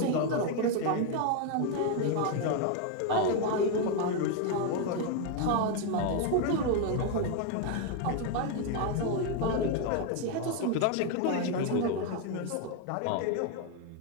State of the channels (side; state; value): both; different; correlation 0.01